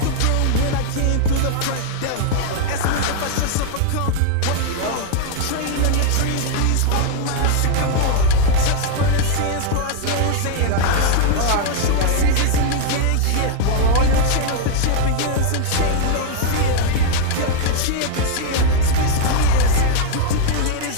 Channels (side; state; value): both; different; correlation 0.00